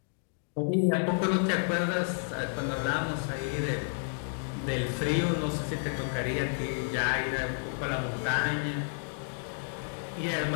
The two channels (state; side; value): silent; right; 57 dB below the other